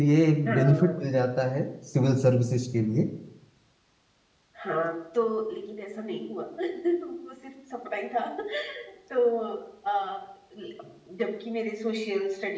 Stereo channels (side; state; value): both; identical; correlation 1.00